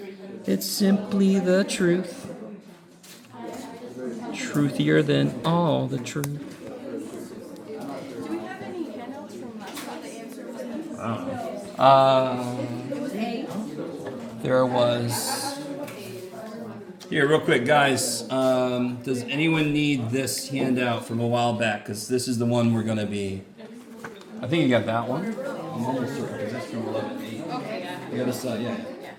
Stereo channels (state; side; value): identical; both; correlation 1.00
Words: It's simply the truth. Truthier than all the truth. Do we have any handouts from last time, the answers? It was A. There was. Here, real quick, guys. Does anyone need this handout from a while back? Because this is the one we're going to be. I think you got that one. I'm almost certain because that's from 11:8. Okay. You got this, yeah.